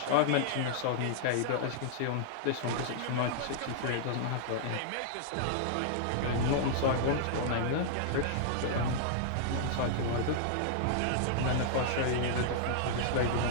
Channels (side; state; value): both; different; correlation -0.01